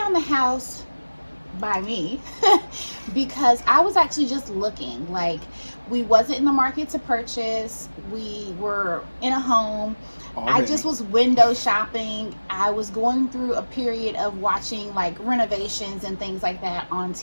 the house by me because I was actually just looking. Like, we wasn't in the market to purchase. We were in a home. I just was window shopping. I was going through a period of watching like renovations and things like that on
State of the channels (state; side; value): inverted; both; correlation -1.00